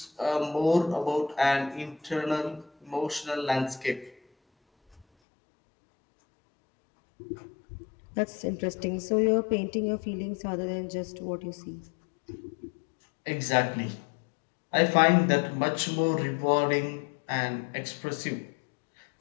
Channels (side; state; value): right; drops out; at 5.1 s